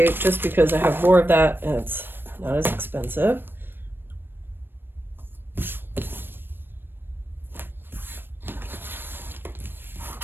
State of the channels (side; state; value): left; late; 0.097 ms